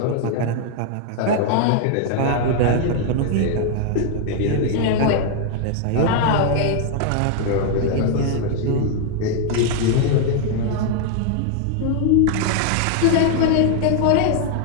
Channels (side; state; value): both; different; correlation 0.00